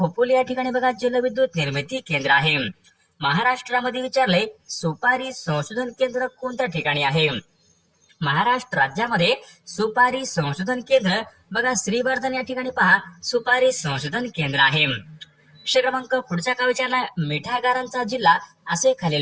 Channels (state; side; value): identical; both; correlation 1.00